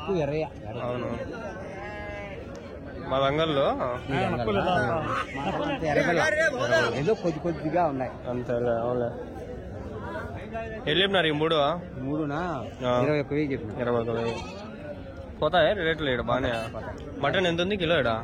అవును. మా రంగంలో ఏదో కొద్దిగా ఉన్నాయి అంతేలే. అవునులే. వెళ్ళిపోయినారు ఈ 3? 21,000 చెప్పిన. 21,000 పోతాయి రేట్లు ఇక్కడ బాగానే. మటన్ ఎంత ఉంది కిలో ఇక్కడ?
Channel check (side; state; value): both; identical; correlation 1.00